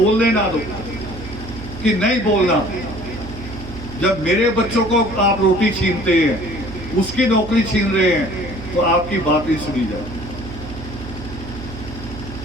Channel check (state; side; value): noise; right; hum, 12 dB below the sound